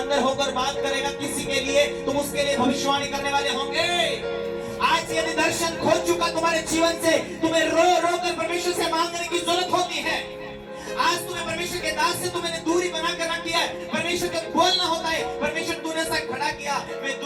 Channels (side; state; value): both; identical; correlation 1.00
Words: होकर बात करेगा किसी के लिए, तुम उसके लिए भविष्यवाणी करने वाले होंगे। आज यदि दर्शन खो चुका तुम्हारे जीवन से, तुम्हें रो रो कर परमेश्वर से मांगने की जरूरत होती है। आज तुम्हें परमेश्वर के दास से तुमने दूरी बनाकर रख दिया है। परमेश्वर का बोलना होता है, परमेश्वर तूने सा खड़ा किया, मैं